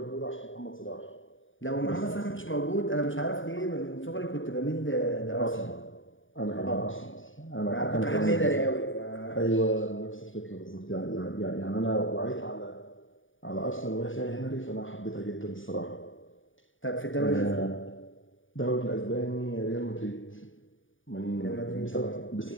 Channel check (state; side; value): late; right; 0.57 ms